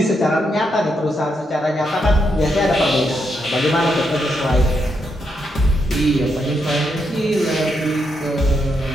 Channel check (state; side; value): normal; both; correlation 0.81